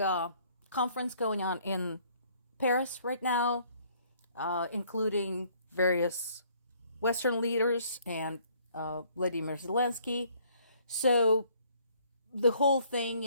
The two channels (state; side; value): inverted; both; correlation -0.62